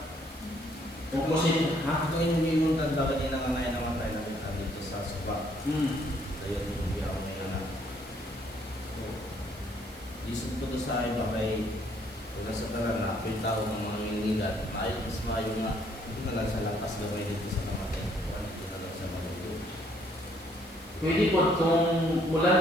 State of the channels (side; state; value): right; noise; hiss, 23 dB below the sound